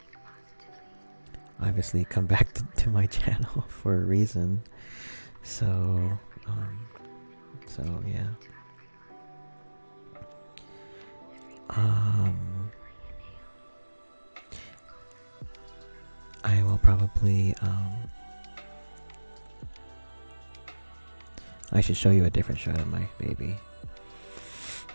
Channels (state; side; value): inverted; both; correlation -1.00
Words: obviously come back to my channel for a reason. So yeah. I will probably I should show you a different shot of my baby.